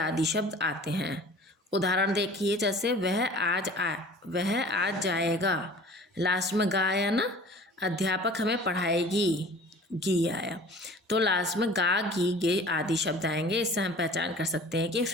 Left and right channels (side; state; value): both; normal; correlation 0.45